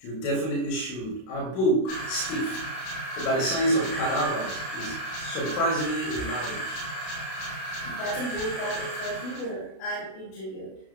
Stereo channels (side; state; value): right; late; 32 ms